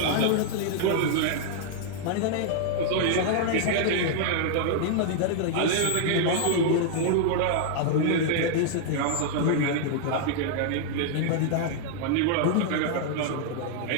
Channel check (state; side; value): different; both; correlation -0.01